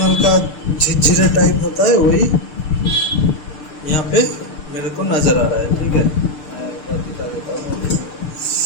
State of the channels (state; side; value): late; right; 6.8 ms